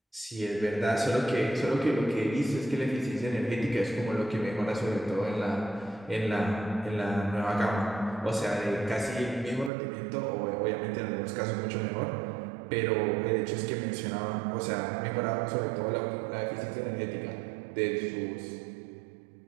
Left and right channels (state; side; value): drops out; left; at 9.7 s